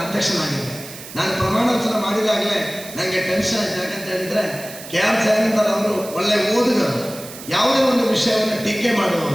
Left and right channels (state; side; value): noise; right; hiss, 14 dB below the sound